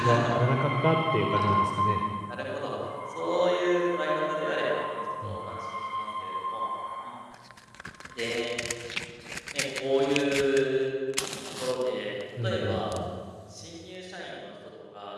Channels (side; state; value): both; identical; correlation 1.00